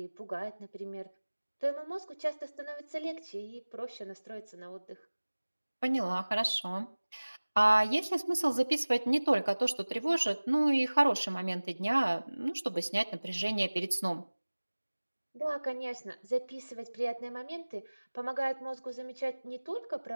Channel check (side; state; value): both; inverted; correlation -1.00